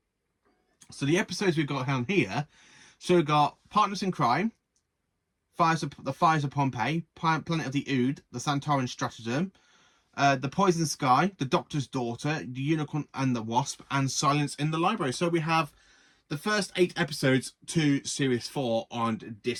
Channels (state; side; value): identical; both; correlation 1.00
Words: So the episodes we've got down here, so we've got Partners in Crime, The Fires of Pompeii, Planet of the Ood, The Santorum Stratagem, The Poison Sky, The Doctor's Daughter, The Unicorn and the Wasp, and Silence in the Library. So we have the first 8 episodes to Series 4 on